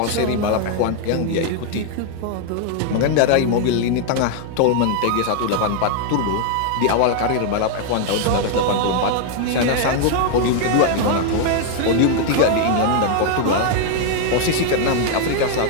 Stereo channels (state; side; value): different; both; correlation 0.00